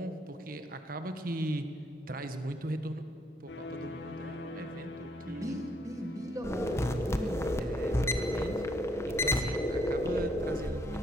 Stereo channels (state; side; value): normal; both; correlation 0.70